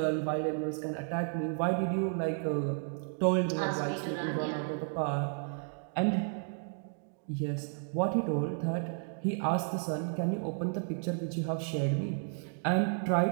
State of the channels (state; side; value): silent; left; 56 dB below the other